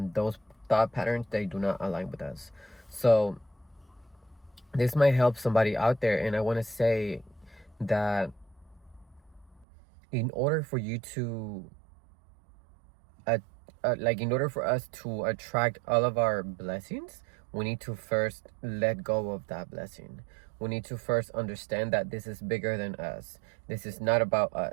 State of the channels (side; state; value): left; drops out; at 9.7 s